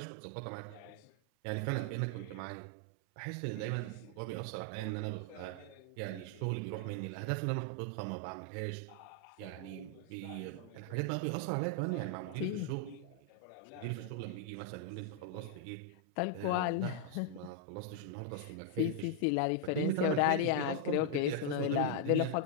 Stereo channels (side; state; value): both; different; correlation -0.01